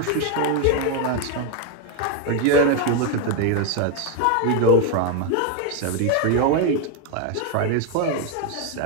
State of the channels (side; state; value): both; different; correlation 0.02